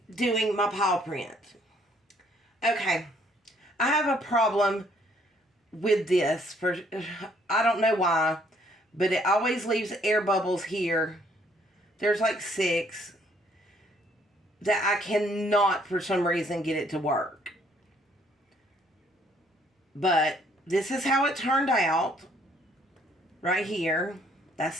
doing my paw print. Okay, I have a problem with this. I don't know why, but it always leaves air bubbles here. There's like 6 that I cannot for some reason get it to work. But this is how it turned out. Right here. That's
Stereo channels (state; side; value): normal; both; correlation 0.65